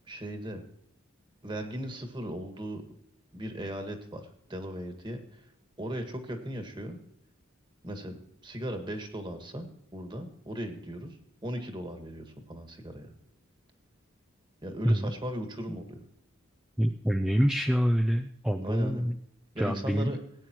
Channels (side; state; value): both; normal; correlation 0.93